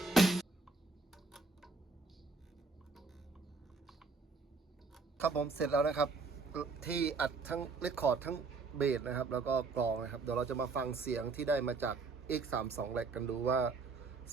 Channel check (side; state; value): left; quieter; 4.2 dB